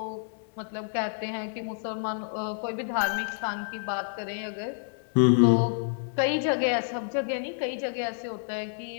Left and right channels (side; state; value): right; silent; 59 dB below the other